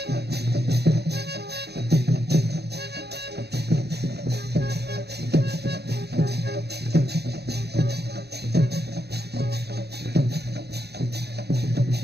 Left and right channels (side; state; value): left; late; 0.48 ms